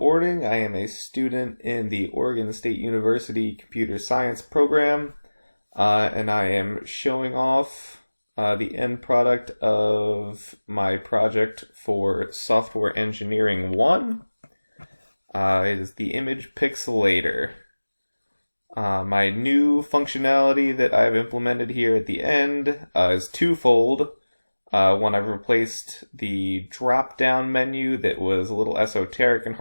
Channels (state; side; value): inverted; both; correlation -1.00